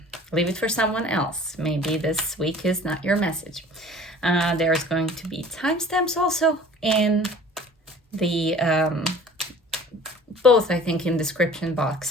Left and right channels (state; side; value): normal; both; correlation 0.47